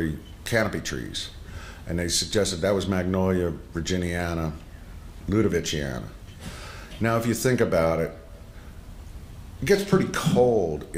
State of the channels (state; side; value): identical; both; correlation 1.00